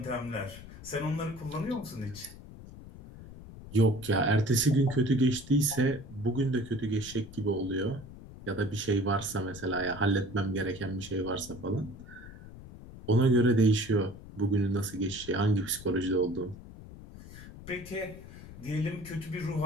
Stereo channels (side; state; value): left; noise; rumble, 16 dB below the sound